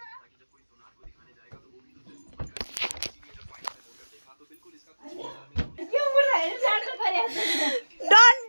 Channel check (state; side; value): inverted; both; correlation -1.00